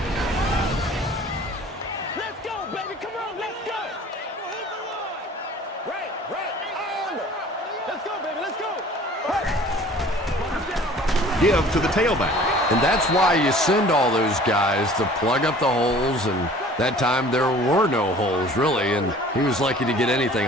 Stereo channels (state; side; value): normal; both; correlation 0.48